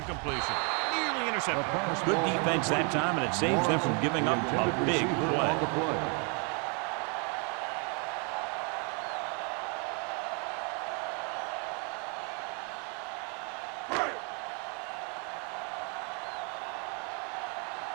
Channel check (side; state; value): left; quieter; 36.2 dB